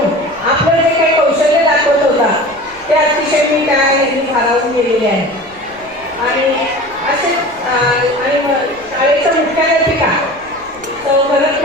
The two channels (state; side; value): noise; left; rumble, 26 dB below the sound